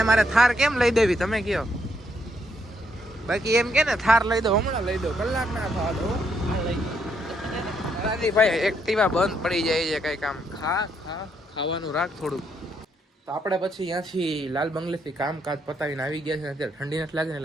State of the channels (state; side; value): normal; both; correlation 0.75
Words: મારે થાર કેમ લઈ દેવી તમે કયો? બાકી એમ કે ને થાર લઈ દો, હમણાં લઈ દો, કલાક ના થવા દો. ભાઈ એક્ટિવા બંધ પડી જાય છે. કઈ કામ ખાવાનું રાખ થોડું. તો આપણે પછી ત્યાંથી લાલ બંગલેથી કામકાજ પતાવીને આવી ગયા છે. અત્યારે ઠંડી નથી લાગે ને,